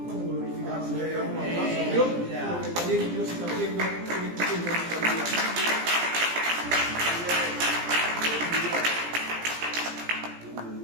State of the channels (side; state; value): left; late; 17 ms